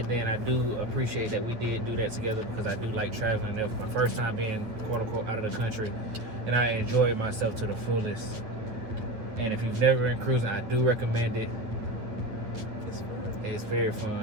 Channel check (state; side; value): late; left; 9.0 ms